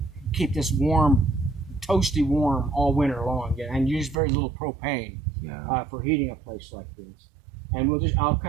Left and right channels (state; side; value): drops out; left; at 4.2 s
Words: keep this warm, toasty warm all winter long, and use very little propane for heating a place like this. And I'll